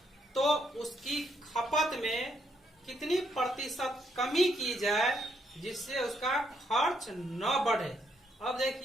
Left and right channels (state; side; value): normal; both; correlation 0.74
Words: तो उसकी खपत में कितनी प्रतिशत कमी की जाए जिससे उसका खर्च न बढ़े। अब